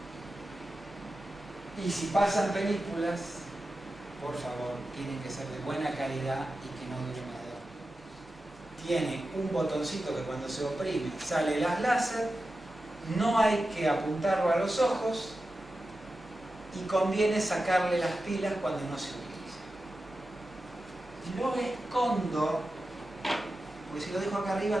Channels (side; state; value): both; normal; correlation 0.92